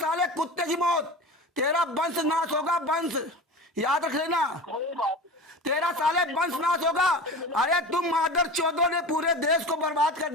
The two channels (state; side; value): normal; both; correlation 0.32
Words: कुत्ते की मौत। तेरा वंश नाश होगा, वंश याद रख लेना, तेरा साले वंश नाश होगा। अरे तुम मादर चौधों ने पूरे देश को बर्बाद कर